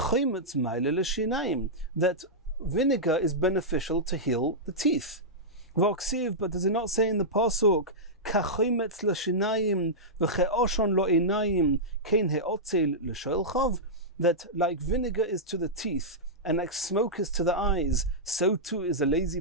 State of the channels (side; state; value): both; normal; correlation -0.11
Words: meile l'shinayim, that vinegar is beneficial to heal the teeth. V'oksiv, but does it not say in the pasuk, kachometz l'shinayim v'che'oshon lo einayim kein he'otzel l'shoelchav, that like vinegar is to the teeth, and like smoke is to the eyes, so too is a